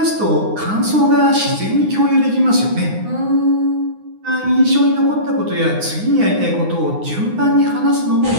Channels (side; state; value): left; late; 9.7 ms